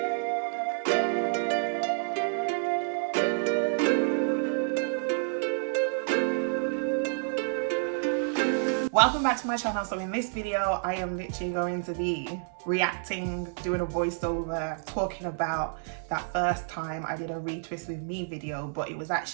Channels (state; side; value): silent; left; 59 dB below the other